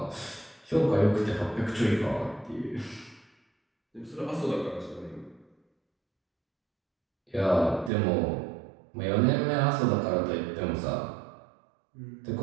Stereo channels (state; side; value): drops out; left; at 7.9 s